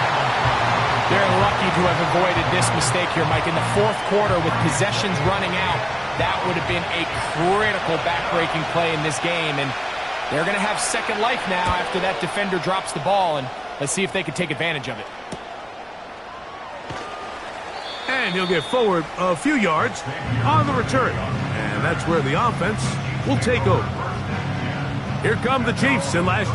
They're lucky to have avoided this mistake here, Mike. In the fourth quarter, with possessions running out, that would have been a critical back-breaking play in this game. And they're going to have second life now after that defender drops the ball. And let's see if they can take advantage of it. And he'll get forward a few yards on the return. And that's where the offense will take over. Here come the Chiefs and last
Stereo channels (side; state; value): both; identical; correlation 1.00